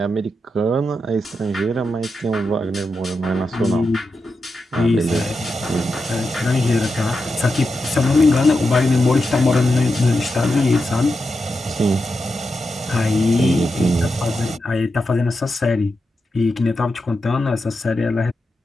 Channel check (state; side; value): normal; both; correlation 0.88